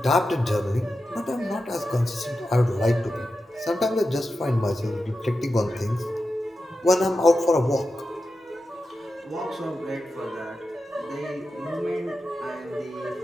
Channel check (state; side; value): normal; both; correlation 0.91